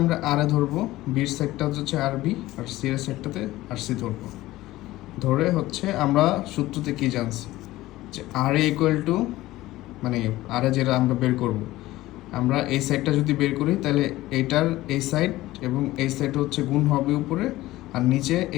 আমরা আর এ ধরবো, বির সাইডটা হচ্ছে আর বি, আর সি এর সাইডটাতে আর সি ধরবো। ধরে হচ্ছে আমরা সূত্রতে কি জানছি যে আর এ ইকুয়াল টু, মানে আর এ যেটা আমরা বের করব, আমরা এই সাইডটা যদি বের করি তাহলে এইটার এই সাইড এবং এই সাইড হচ্ছে গুণ হবে উপরে, আর নিচে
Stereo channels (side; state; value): right; quieter; 17.0 dB